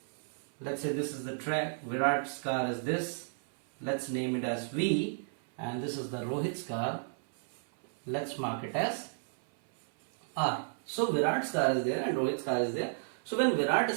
Let's say this is the track. Virat's car is this. Let's name it as V. And this is the Rohit's car. Let's mark it as R. So Virat's car is there and Rohit's car is there. So when Virat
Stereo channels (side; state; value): left; silent; 56 dB below the other